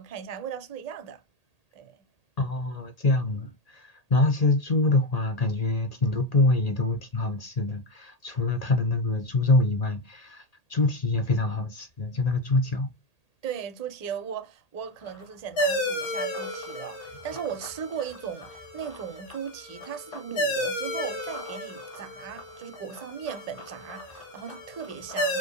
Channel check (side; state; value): right; late; 1.8 ms